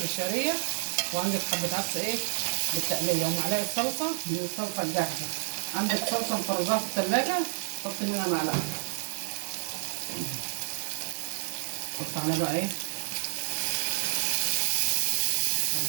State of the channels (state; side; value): silent; left; digital silence